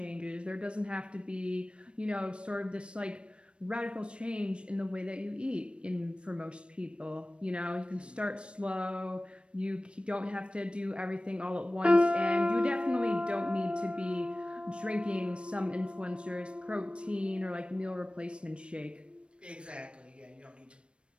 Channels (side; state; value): left; late; 0.058 ms